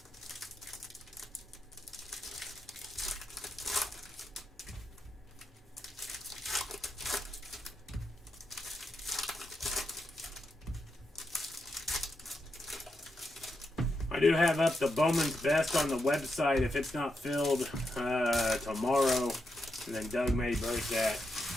I do have up the Bowman's Best on the website if it's not filled tomorrow, and then Doug may break that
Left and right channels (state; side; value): normal; both; correlation 0.85